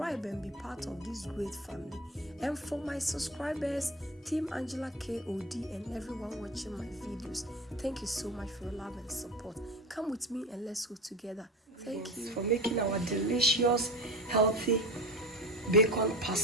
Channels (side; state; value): both; normal; correlation 0.30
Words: and be part of this great family. And for my subscribers, Team Angela K.O.D. and everyone watching my videos, thank you so much for your love and support. Come with me and let's cook together. Thank you for making our delicious, healthy bacon